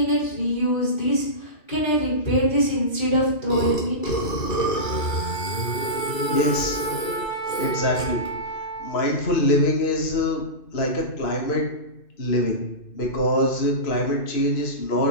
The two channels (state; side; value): late; right; 2.6 ms